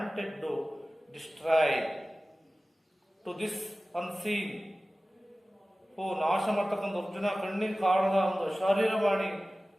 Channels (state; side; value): normal; both; correlation 0.97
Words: to destroy to this unseen, ನಾಶ ಮಾಡ್ತಕ್ಕಂಥ ಅರ್ಜುನ ಕಣ್ಣಿಗೆ ಕಾಣದ ಒಂದು